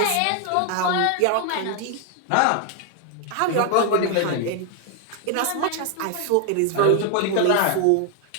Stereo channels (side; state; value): both; different; correlation 0.00